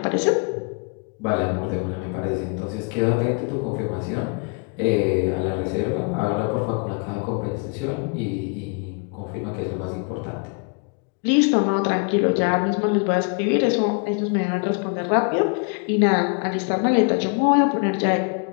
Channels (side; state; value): right; quieter; 35.8 dB